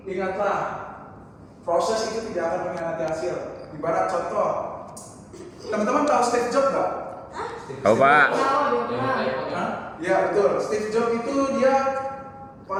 Ingatlah, proses itu tidak akan mengkhianati hasil. Ibarat contoh, teman-teman tahu Steve Jobs nggak? Hah? Tahu Pak. Tahu dia yang pernah. iPhone ya. Hah? Iya betul. Steve Jobs itu dia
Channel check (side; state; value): both; identical; correlation 1.00